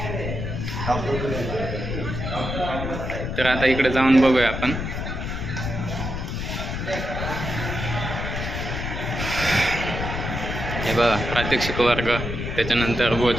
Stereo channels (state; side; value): noise; left; rumble, 4 dB below the sound